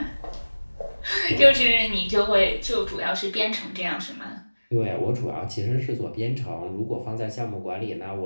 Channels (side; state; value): both; inverted; correlation -1.00